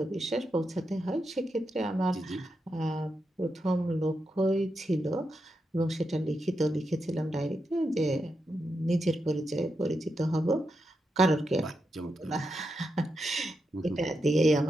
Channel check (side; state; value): both; normal; correlation 0.86